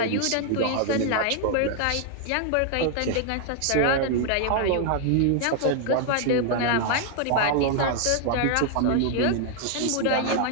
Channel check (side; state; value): both; different; correlation 0.00